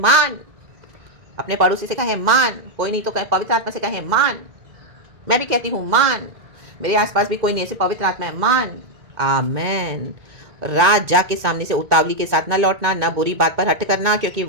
अपने पड़ोसी से कहे मान, कोई नहीं तो कहे पवित्र आत्मा से कहे मान। मैं भी कहती हूँ मान, मेरे आसपास भी कोई नहीं ऐसे पवित्र आत्मा है, मान। आमेन। राजा के सामने से उतावली के साथ ना लौटना, ना बुरी बात पर हट करना, क्योंकि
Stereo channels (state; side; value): late; left; 2.1 ms